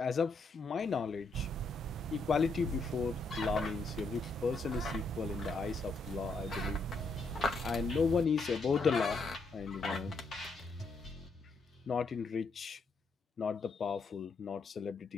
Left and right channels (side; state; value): right; quieter; 3.5 dB